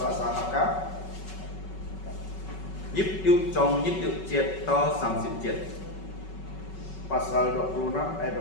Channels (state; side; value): late; right; 5.3 ms